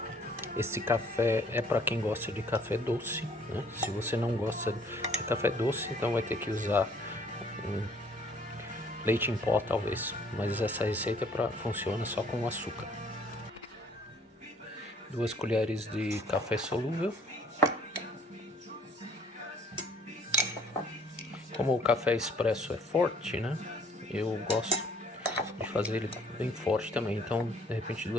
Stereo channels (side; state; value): both; normal; correlation 0.59